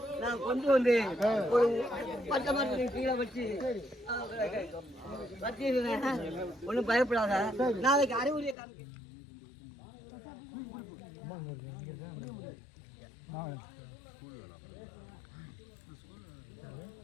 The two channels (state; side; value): drops out; right; at 8.6 s